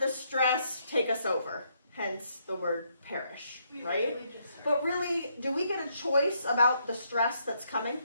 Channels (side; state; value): both; inverted; correlation -0.74